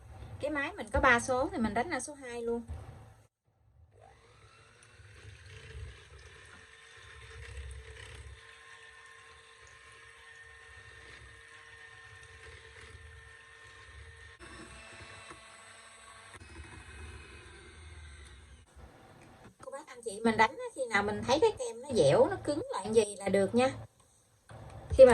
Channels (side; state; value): both; identical; correlation 1.00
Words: Cái máy mình có 3 số thì mình đánh là số 2 luôn. Cô bác anh chị mình đánh khi nào mình thấy cái kem nó dẻo, nó cứng lại gì là được nha. Khi